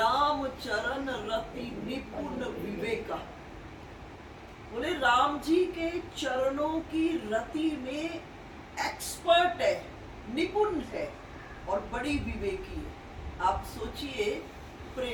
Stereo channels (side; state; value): both; identical; correlation 1.00